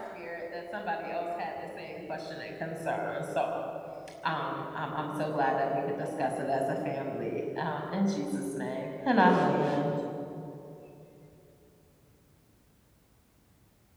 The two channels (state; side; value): identical; both; correlation 1.00